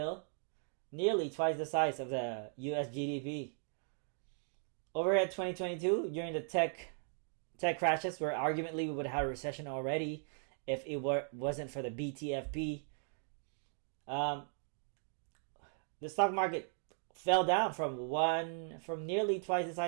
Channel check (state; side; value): silent; left; 53 dB below the other